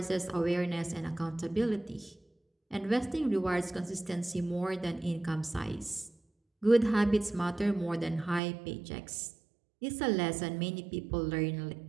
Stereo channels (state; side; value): drops out; left; at 8.4 s